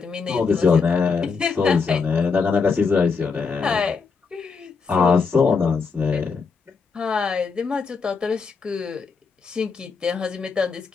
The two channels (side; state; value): right; quieter; 5.1 dB